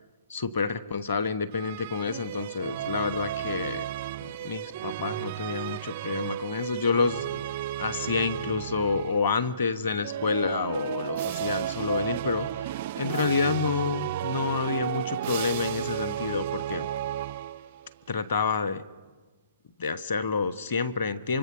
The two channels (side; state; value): both; inverted; correlation -0.57